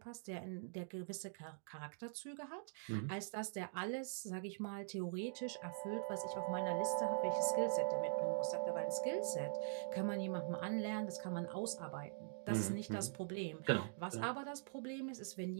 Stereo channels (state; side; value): silent; left; digital silence